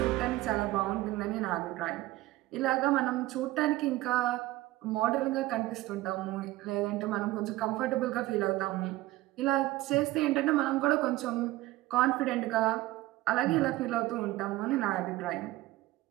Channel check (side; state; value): left; quieter; 17.6 dB